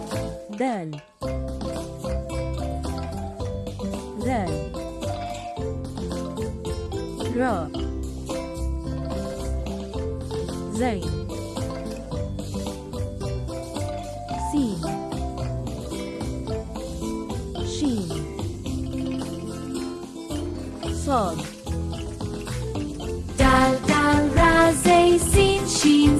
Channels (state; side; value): identical; both; correlation 1.00